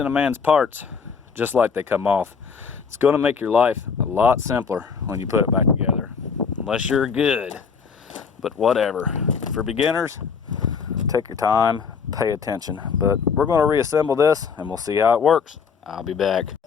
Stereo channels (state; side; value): quieter; right; 5.9 dB